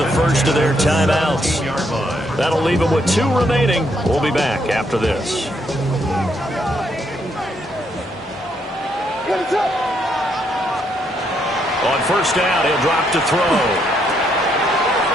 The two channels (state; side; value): normal; both; correlation 0.74